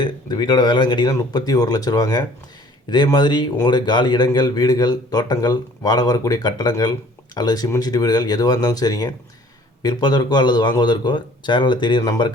இந்த வீட்டோட விலைன்னு கேட்டிங்கன்னா 31 லட்ச ரூபாங்க. இதே மாதிரி உங்களுடைய காலி இடங்கள், வீடுகள், தோட்டங்கள், வாடகை வரக்கூடிய கட்டடங்கள் அல்லது சிமெண்ட் சீட்டு வீடுகள் எதுவாக இருந்தாலும் சரிங்க, விற்பதற்கோ அல்லது வாங்குவதற்கோ சேனலில் தெரிகிற நம்பரை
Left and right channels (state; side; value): normal; both; correlation 0.53